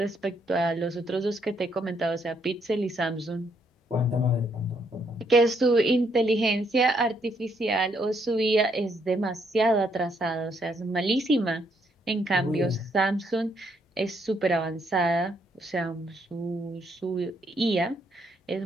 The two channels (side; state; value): both; normal; correlation 0.73